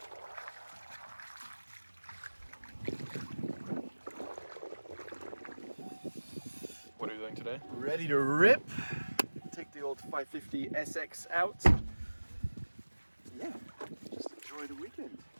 What are you doing today? Ready to rip. Take the old 550 SX out. Yeah, just enjoy the weekend.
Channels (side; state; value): both; inverted; correlation -1.00